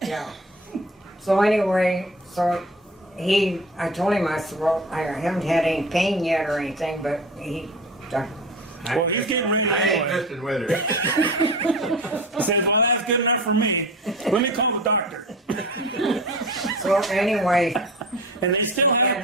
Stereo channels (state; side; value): normal; both; correlation 0.35